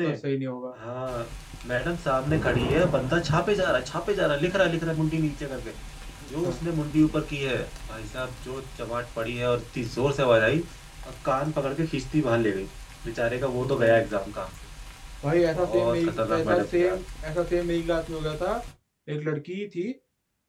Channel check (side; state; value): both; identical; correlation 1.00